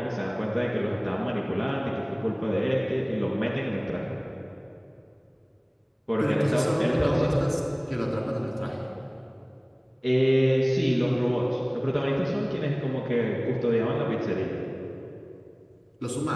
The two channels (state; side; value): identical; both; correlation 1.00